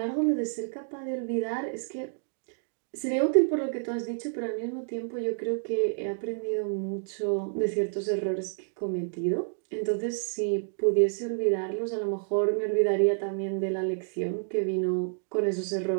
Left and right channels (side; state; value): left; silent; digital silence